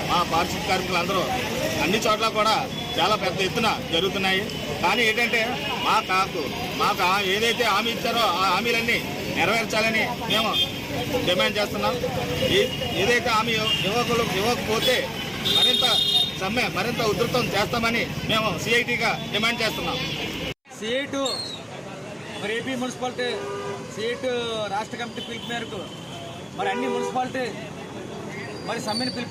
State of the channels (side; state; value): both; identical; correlation 1.00